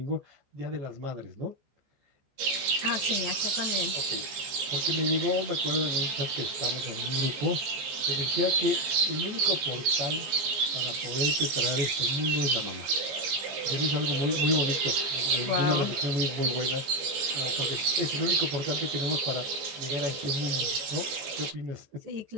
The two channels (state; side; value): late; left; 15 ms